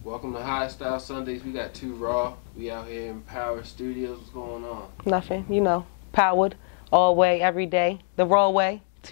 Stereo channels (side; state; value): right; silent; digital silence